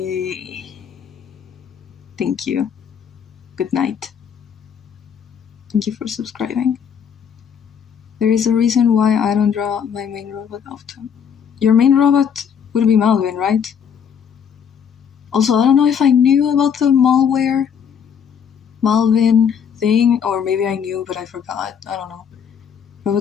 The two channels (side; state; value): right; quieter; 7.6 dB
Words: Thank you. Good night. Thank you for subscribing. There is a reason why I don't draw my main robot often. Your main robot would be Malvin, right? Also, I don't know if I knew about the malware Malvin thing, or maybe I knew but I forgot. I don't know.